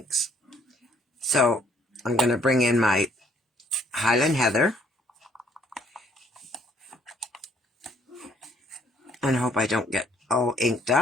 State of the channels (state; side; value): normal; both; correlation 0.64